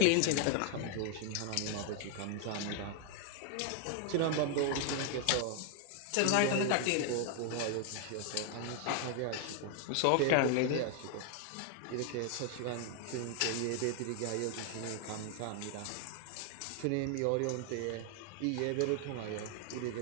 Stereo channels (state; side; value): different; both; correlation 0.00